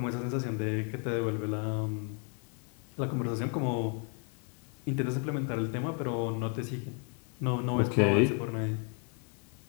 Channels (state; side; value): quieter; right; 38.8 dB